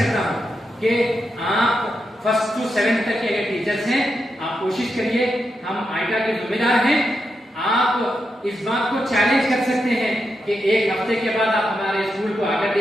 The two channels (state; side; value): normal; both; correlation 0.86